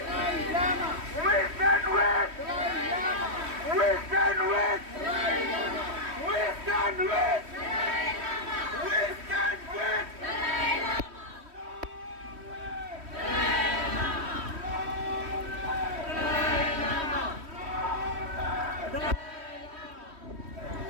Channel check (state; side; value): late; left; 3.1 ms